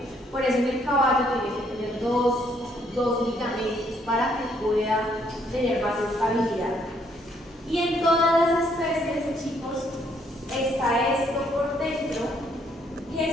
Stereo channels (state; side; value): normal; both; correlation 0.69